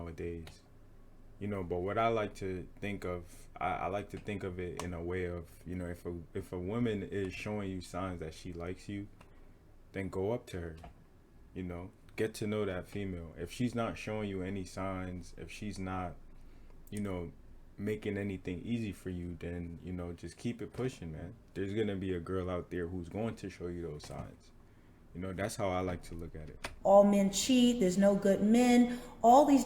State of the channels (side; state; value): both; identical; correlation 1.00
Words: You know, but what I like to think of, I like to think of it in a way of, you know, if a woman is showing you signs that she likes you, then go up to her. You know, get to know that female. If she's not showing you any signs, if she's not, you know, making anything easy for you, then, you know, just keep it pushing, man. There's gonna be a girl out there who's going to show you those signs. You know, that's how I like to look at it. All men cheat, there's no good men, all these